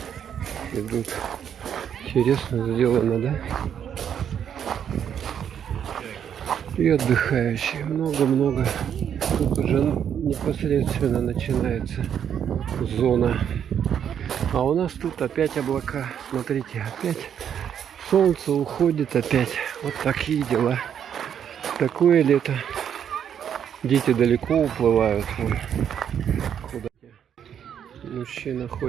идут. Интересно сделано, да? И отдыхающие. Много-много. Тут уже непосредственно начинается зона. А у нас тут опять облака. Смотрите, опять солнце уходит опять. Вот такие дела. Такое лето. Дети далеко уплывают. Вон. Куда? Мужчина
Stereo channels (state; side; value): quieter; left; 8.7 dB